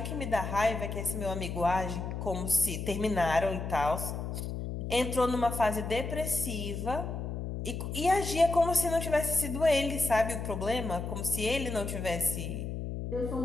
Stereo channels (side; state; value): left; noise; hum, 5 dB below the sound